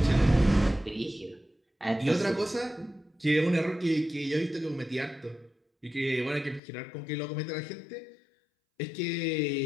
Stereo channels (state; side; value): drops out; right; at 6.6 s